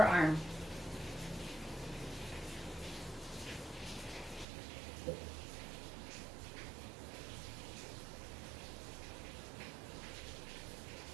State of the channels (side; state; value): left; drops out; at 4.5 s